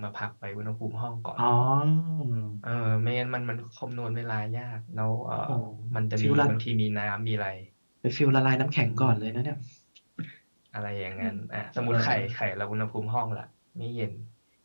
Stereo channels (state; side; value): inverted; both; correlation -1.00